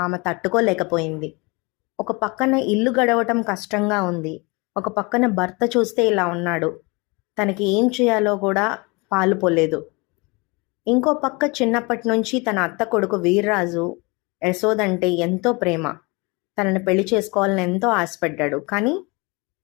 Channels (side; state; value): right; quieter; 27.6 dB